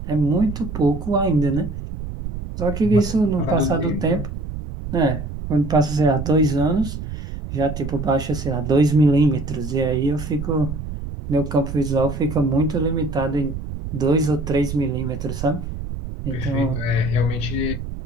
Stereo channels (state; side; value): noise; right; rumble, 7 dB below the sound